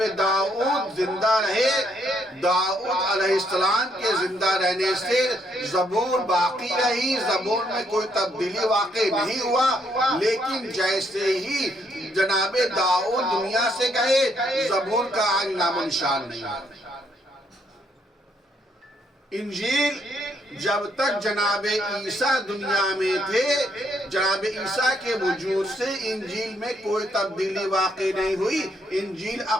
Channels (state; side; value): normal; both; correlation 0.72